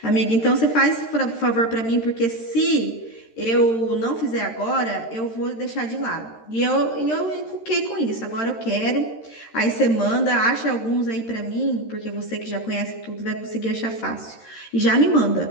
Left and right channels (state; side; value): late; right; 13 ms